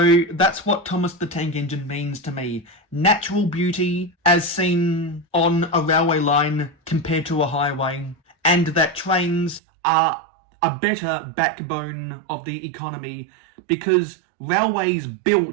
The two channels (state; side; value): drops out; left; at 9.6 s